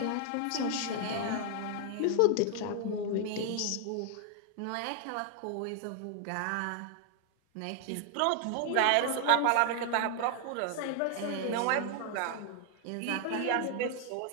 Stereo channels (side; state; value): both; different; correlation 0.00